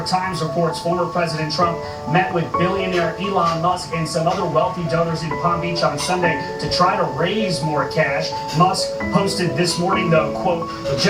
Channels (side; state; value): both; identical; correlation 1.00